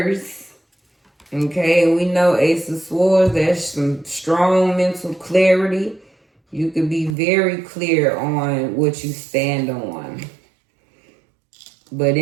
Okay, and we know Ace of Swords, that's some strong mental clarity. You could be very clear on what you stand on. But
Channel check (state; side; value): drops out; left; at 7.2 s